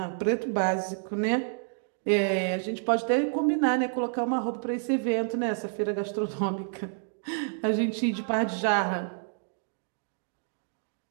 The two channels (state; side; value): silent; left; digital silence